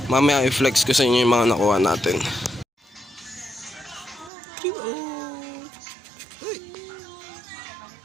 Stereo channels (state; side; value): drops out; left; at 4.3 s